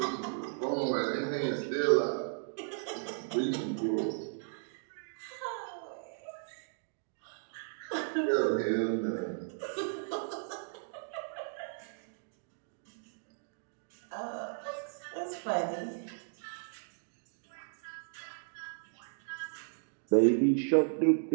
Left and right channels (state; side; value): silent; left; digital silence